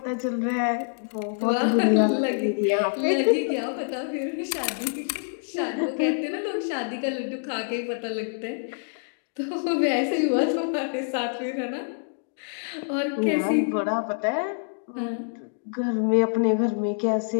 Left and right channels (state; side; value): silent; right; digital silence